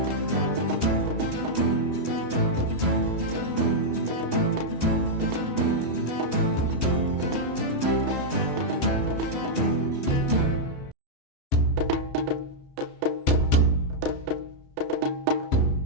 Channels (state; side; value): late; right; 3.1 ms